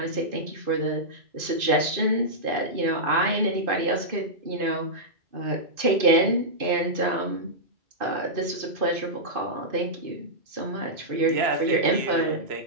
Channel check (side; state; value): left; late; 2.5 ms